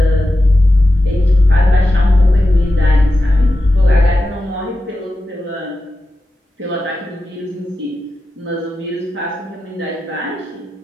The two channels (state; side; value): normal; both; correlation 0.91